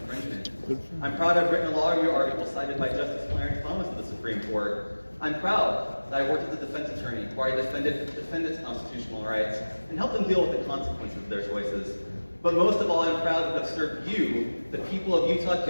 I'm proud I've written a law review article cited by Justice Clarence Thomas of the Supreme Court. I'm proud that I worked as a defense attorney where I defended defendants' constitutional rights and helped them deal with the consequences of their choices. But most of all, I'm proud to have served you, the people of Utah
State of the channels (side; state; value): both; inverted; correlation -1.00